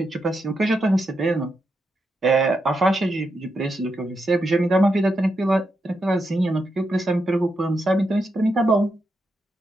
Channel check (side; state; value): both; normal; correlation 0.84